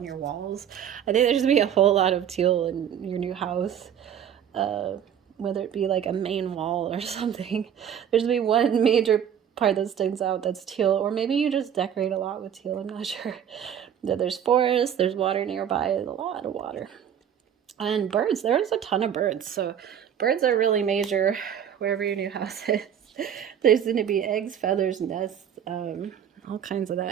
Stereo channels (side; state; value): left; quieter; 9.1 dB